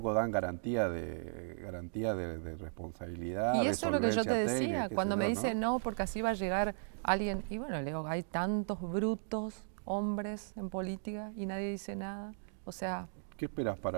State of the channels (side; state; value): left; silent; digital silence